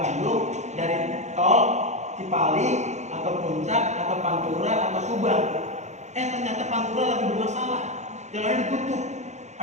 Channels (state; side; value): late; left; 0.33 ms